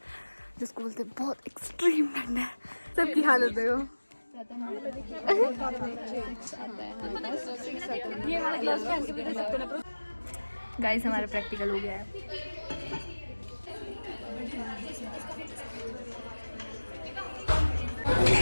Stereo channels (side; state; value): both; inverted; correlation -1.00